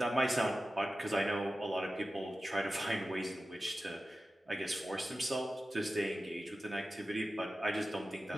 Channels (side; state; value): both; normal; correlation 0.94